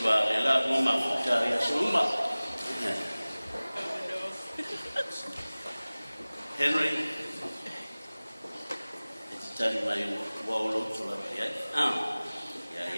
wa ela mo mafuta ya suma. Henry, it's telling my wall to la ya.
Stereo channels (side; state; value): both; inverted; correlation -0.99